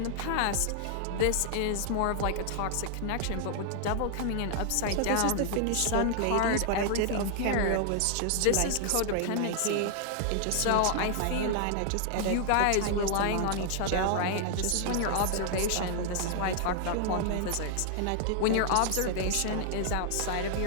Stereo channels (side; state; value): both; different; correlation 0.00